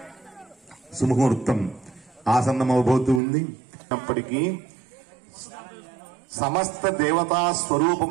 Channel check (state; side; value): drops out; left; at 3.2 s